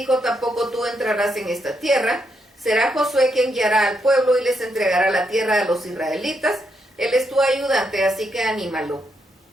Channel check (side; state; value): both; normal; correlation 0.80